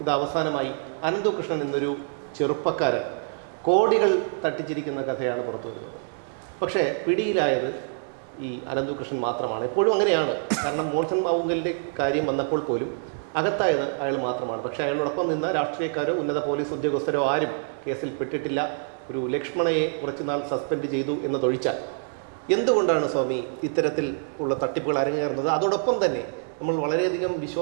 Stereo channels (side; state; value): left; silent; digital silence